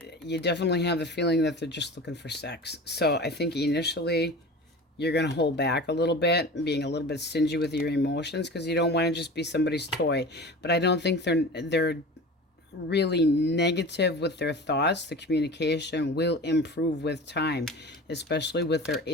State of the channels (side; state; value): both; normal; correlation 0.35